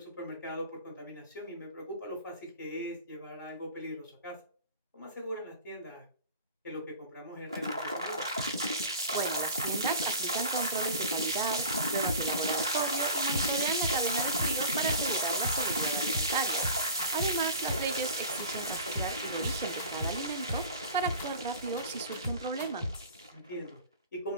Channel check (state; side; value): inverted; both; correlation -0.39